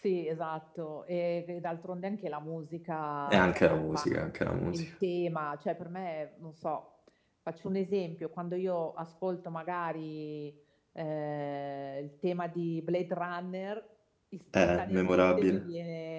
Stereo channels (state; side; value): identical; both; correlation 1.00